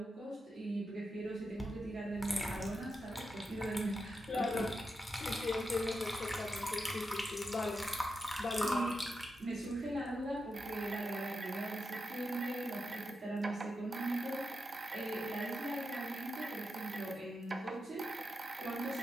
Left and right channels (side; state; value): both; normal; correlation 0.87